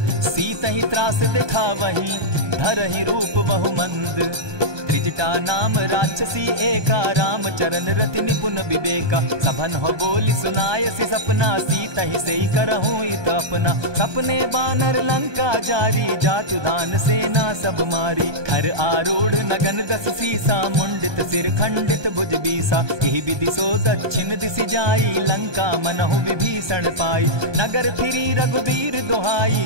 सीतहि त्रास दिखावहि, धरहि रूप बहु मंद। त्रिजटा नाम राक्षसी एका, राम चरण रति निपुण विवेका। सभन हो बोली सुनायसी सपना, सीतहि सेई करहूँ इत अपना। सपने बानर लंका जारी, जातु दान सेना सब मारी। खर आरूढ़ नगन दस सीसा, मुंडित सिर खंडित भुज बीसा। यही विधि सो दक्षिण दिशि जाई, लंका मनहु विभीषण पाई। नगर फिरी रघुबीर दुहाई,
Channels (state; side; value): late; left; 1.2 ms